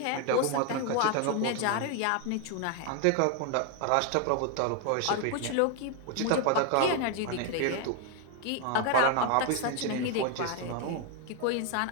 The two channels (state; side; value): different; both; correlation 0.01